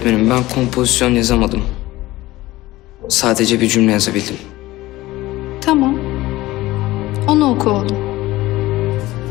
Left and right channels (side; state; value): right; quieter; 17.8 dB